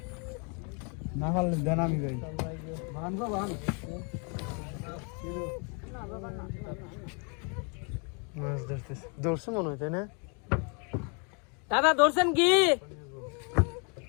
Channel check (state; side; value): quieter; right; 36.1 dB